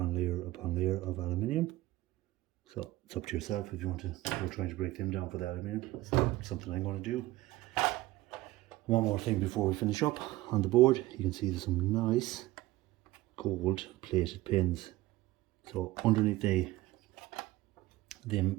layer upon layer of aluminium. So it's up to yourself if you want to go trying to break them down for the aluminium. It's something I'm going to do. One more thing before we finish up. On the board, you can see there's some nice gold plated pins. So underneath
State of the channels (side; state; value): left; quieter; 17.9 dB